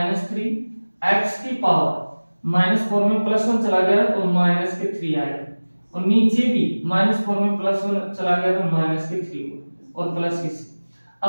x की पावर -4 में +1 चला गया तो माइनस के 3 आएगा, और नीचे भी -4 में +1 चला गया तो माइनस के 3 और प्लस के 6।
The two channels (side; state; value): both; inverted; correlation -1.00